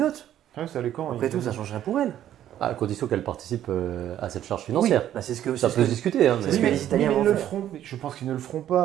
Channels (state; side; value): quieter; left; 11.5 dB